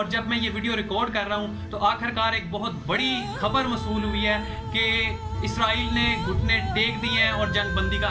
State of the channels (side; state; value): both; identical; correlation 1.00